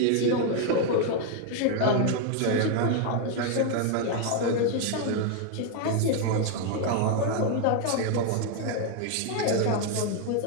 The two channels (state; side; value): different; both; correlation 0.01